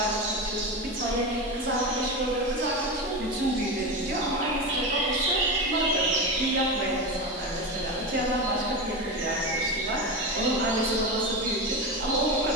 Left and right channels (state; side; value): normal; both; correlation 0.20